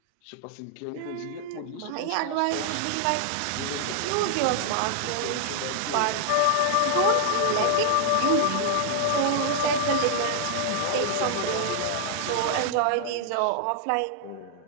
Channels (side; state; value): both; different; correlation 0.00